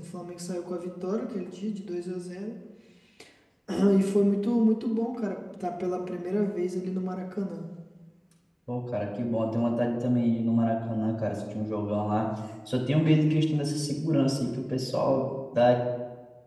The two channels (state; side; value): identical; both; correlation 1.00